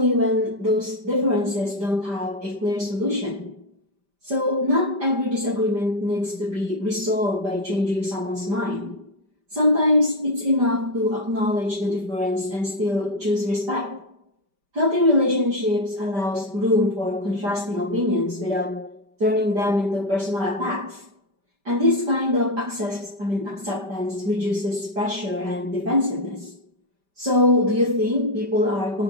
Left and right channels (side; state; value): left; late; 5.1 ms